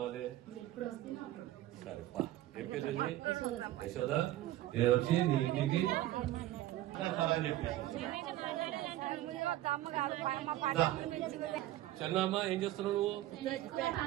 సరే పా. ఏం పేరు? యశోద. నేను వచ్చి నీ ఇంటికి చెన్నమ్మ ఏం చేస్తున్నావు నువ్వు?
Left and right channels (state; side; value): quieter; left; 14.7 dB